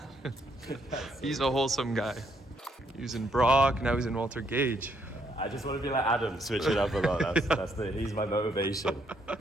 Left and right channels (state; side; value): normal; both; correlation 0.72